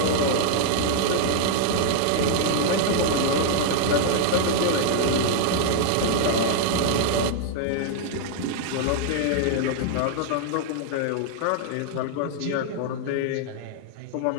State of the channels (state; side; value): different; both; correlation -0.01